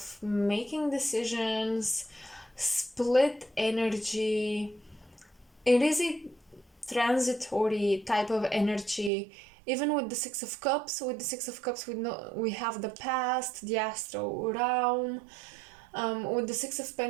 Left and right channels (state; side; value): drops out; left; at 9.1 s